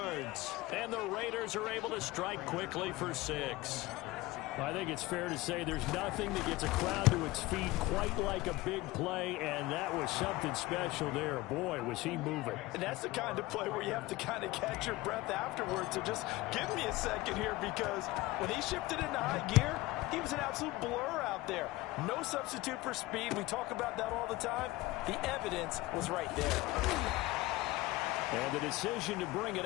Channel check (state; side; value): quieter; right; 19.2 dB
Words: And the Raiders are able to strike quickly for 6. I think it's fair to say there's nothing that gets a crowd to its feet quite like a big play, and that was something special there. Boy, was he moving. And that's the kind of play where you have to kind of catch your breath afterwards. So just give me a second here, because when he shifted into high gear, he was an absolute blur out there. No substitute for speed. We talk about that all the time. The evidence was right there. And the decision to bring it